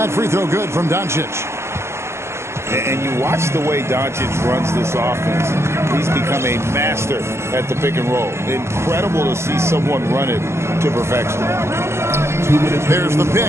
free throw good from Doncic. And you watch the way Doncic runs this offense. He's become a master at the pick and roll. Incredible to see someone run it to perfection. 2 minutes. There's the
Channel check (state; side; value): late; left; 0.13 ms